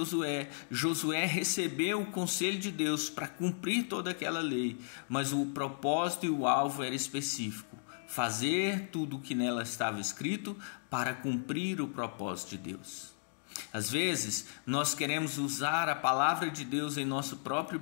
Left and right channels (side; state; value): right; silent; digital silence